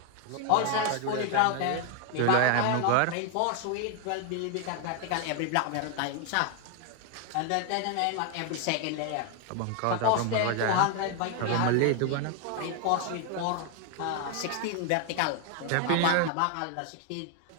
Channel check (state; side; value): different; both; correlation 0.00